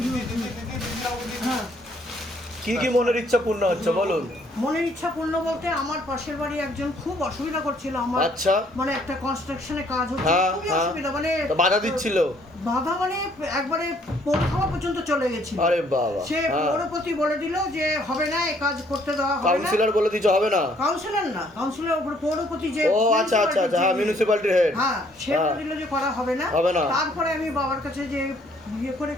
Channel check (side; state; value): both; normal; correlation 0.64